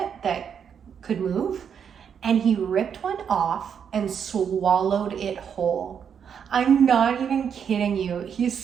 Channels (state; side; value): quieter; left; 7.6 dB